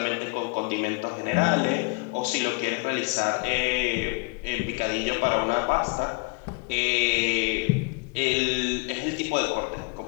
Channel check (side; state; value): right; quieter; 29.1 dB